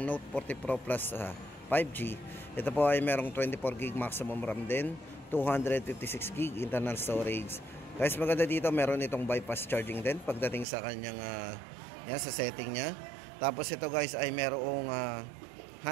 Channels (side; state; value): left; drops out; at 10.7 s